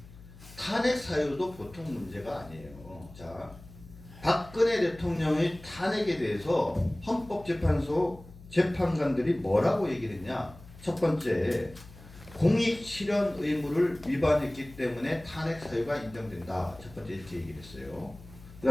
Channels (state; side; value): noise; left; hum, 19 dB below the sound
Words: 탄핵 사유도 보통 문제가 아니에요. 자, 박근혜 대통령의 탄핵에 대해서 헌법재판소 재판관들이 뭐라고 얘기를 했냐? 첫 번째, 공익 실현 의무를 위반했기 때문에 탄핵 사유가 인정된다. 첫 번째 이렇게 얘기를 했어요.